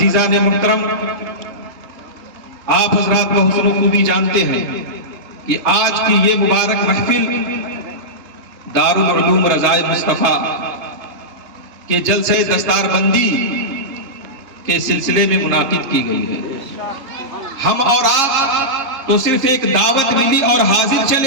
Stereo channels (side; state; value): left; late; 3.7 ms